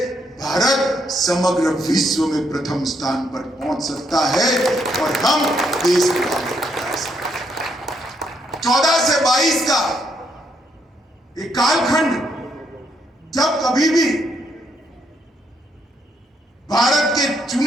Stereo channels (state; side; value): normal; both; correlation 0.75